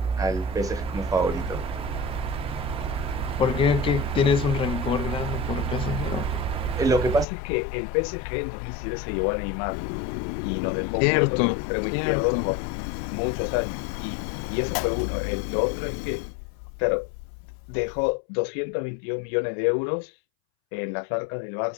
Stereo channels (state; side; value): drops out; right; at 7.2 s